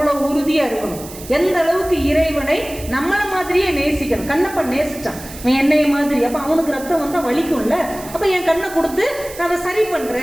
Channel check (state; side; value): noise; right; hiss, 15 dB below the sound